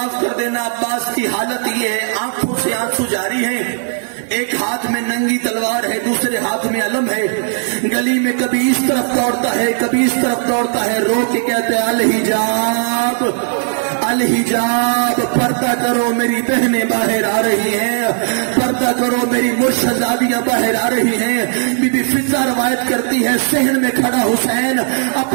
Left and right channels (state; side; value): silent; left; digital silence